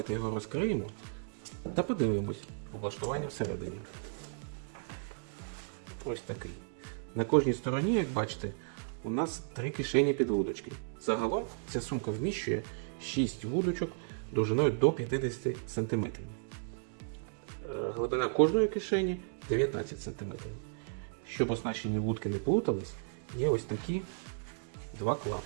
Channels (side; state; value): left; silent; digital silence